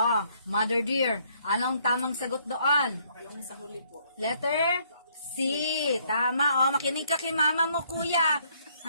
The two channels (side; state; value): both; inverted; correlation -0.67